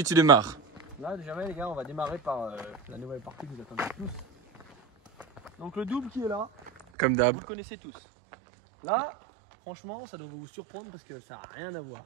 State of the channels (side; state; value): left; drops out; at 6.9 s